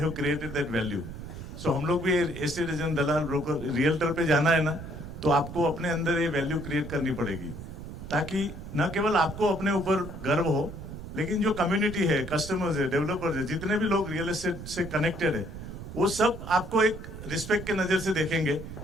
created that value. So हम लोग भी एस्टेट एजेंट, दलाल, ब्रोकर, रियल्टर पे जाना है ना, तो आपको अपने अंदर ये वैल्यू क्रिएट करनी पड़ेगी, ताकि न केवल आपको अपने ऊपर गर्व हो, लेकिन जो कम्युनिटी है, कस्टमर्स है, डेवलपर्स है, जितने भी लोग रियल एस्टेट से कनेक्टेड है, वो सब आपको एक रिस्पेक्ट के नजर से देखेंगे।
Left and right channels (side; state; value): right; noise; rumble, 10 dB below the sound